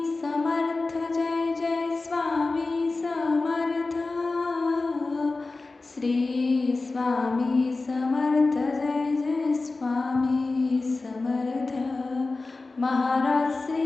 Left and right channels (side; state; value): right; quieter; 3.5 dB